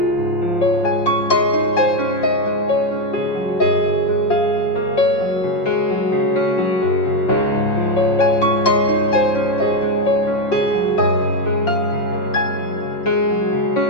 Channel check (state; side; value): late; right; 5.6 ms